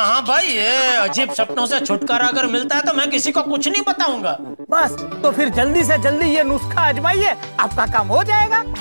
हाँ भाई, ये अजीब सपनों से छुटकारा अगर मिलता है तो मैं किसी को कुछ नहीं बताऊंगा। बस तो फिर जल्दी से जल्दी ये नुस्खा आजमाइए, आपका काम हो जाएगा।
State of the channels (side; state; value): both; inverted; correlation -1.00